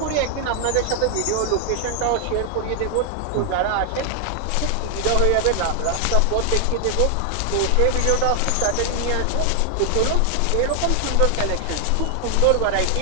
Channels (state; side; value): different; both; correlation 0.00